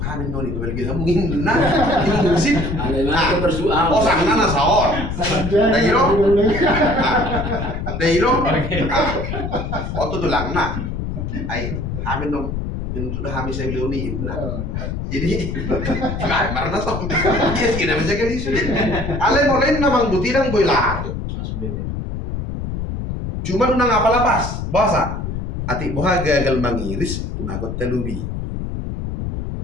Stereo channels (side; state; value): left; noise; rumble, 4 dB below the sound